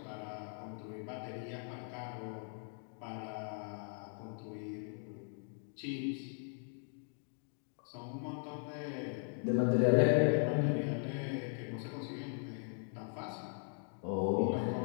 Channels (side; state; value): right; silent; 52 dB below the other